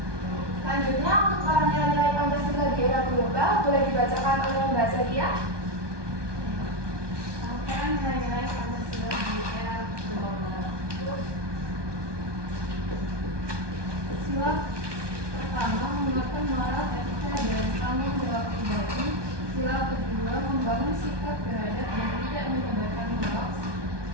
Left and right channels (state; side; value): late; left; 1.2 ms